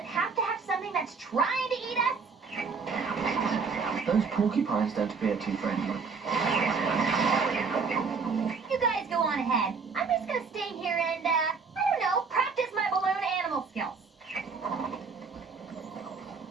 have to have something that's trying to eat us? Those porcupines don't appear too friendly. You guys go on ahead. I'm just gonna stay here and, I don't know, practice my balloon animal skills.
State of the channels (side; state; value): left; quieter; 5.0 dB